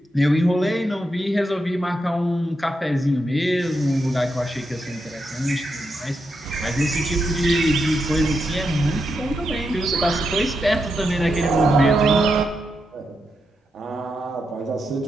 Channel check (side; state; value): both; normal; correlation 0.84